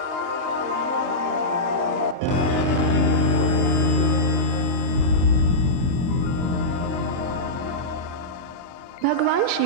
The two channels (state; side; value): normal; both; correlation -0.11